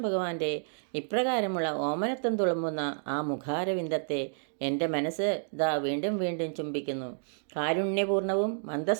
ഭഗവാന്റെ ഇപ്രകാരമുള്ള ഓമനത്വം തുളുമ്പുന്ന ആ മുഖാരവിന്ദത്തെ എൻ്റെ മനസ്സ് ദാ വീണ്ടും വീണ്ടും ചുംബിക്കുന്നു. കാരുണ്യപൂർണവും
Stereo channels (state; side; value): silent; left; digital silence